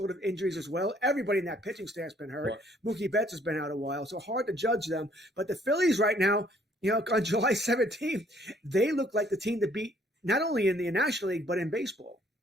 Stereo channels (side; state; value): both; normal; correlation 0.63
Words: of injuries as well. Everybody in that pitching staff's been hurt. Mookie Betts has been out a while, so hard to judge them. But the Phillies right now, on July 17th, they look like the team to beat not only in the National League but in baseball.